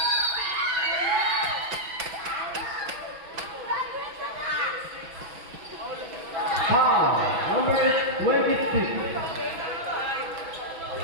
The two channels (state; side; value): late; left; 6.1 ms